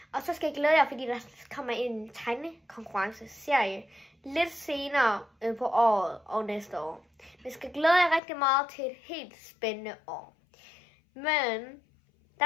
Og så skal I glæde jer, fordi der kommer en tegnekonkurrence-serie lidt senere på året og næste år. Vi skal glæde jer rigtig meget til et helt spændende år. Men der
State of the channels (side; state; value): right; drops out; at 8.2 s